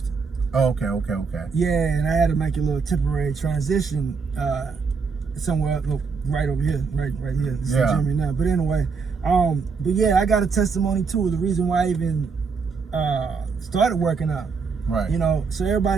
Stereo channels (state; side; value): quieter; left; 5.1 dB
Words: Oh, okay. Yeah, and I had to make a little temporary transition somewhere right over here, right here. This is the gym right now. But anyway, but yeah, I got a testimony too. The reason why I even started working out. Right. You know, so